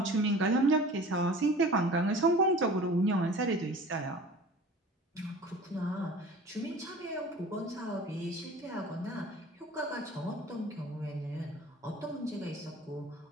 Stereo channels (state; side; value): normal; both; correlation 0.42